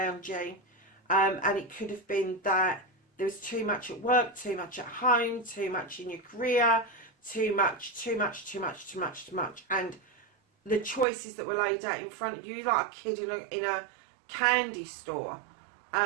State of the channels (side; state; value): left; drops out; at 11.1 s